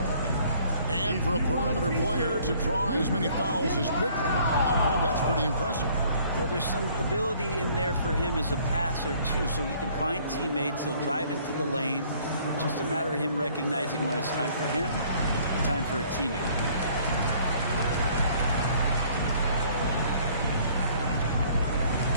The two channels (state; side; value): inverted; both; correlation -0.58